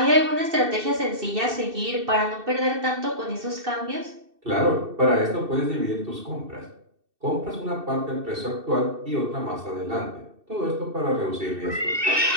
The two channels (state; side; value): late; left; 2.6 ms